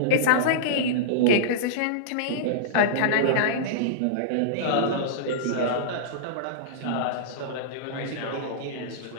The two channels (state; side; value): different; both; correlation -0.03